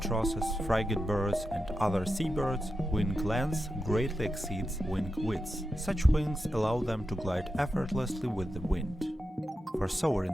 frigate birds and other seabirds, wing length greatly exceeds wing width. Such wings allow them to glide effortlessly with the wind. For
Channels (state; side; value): normal; both; correlation 0.89